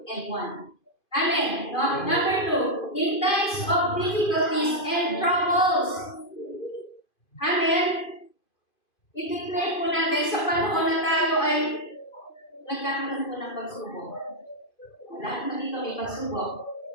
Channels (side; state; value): right; late; 2.5 ms